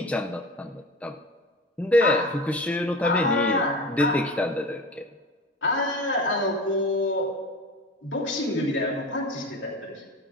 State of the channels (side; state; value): both; normal; correlation 0.32